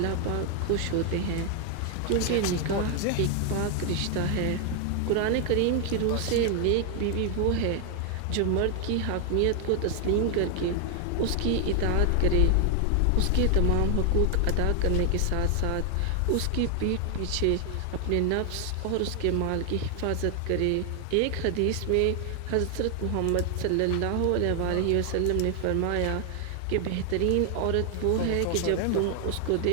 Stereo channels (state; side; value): different; both; correlation 0.00